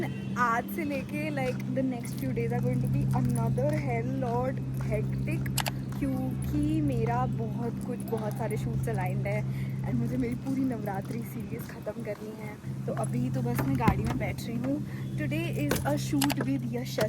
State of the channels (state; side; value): identical; both; correlation 1.00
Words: आज से लेके like the next few days are going to be another hell lot hectic, क्योंकि मेरा बहुत सारे शूट्स अलाइंड है एंड मुझे मेरी पूरी नवरात्रि सीरीज़ ख़त्म करनी है। तो अभी तो बस मैं गाड़ी में बैठ रही हूँ। Today is a shoot with